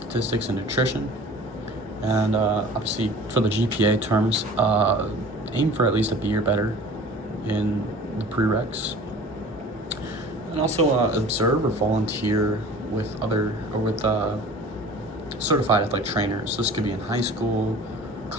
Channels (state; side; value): normal; both; correlation 0.43